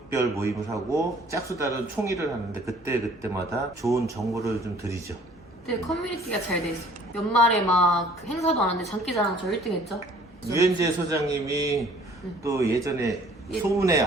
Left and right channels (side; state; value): both; normal; correlation 0.55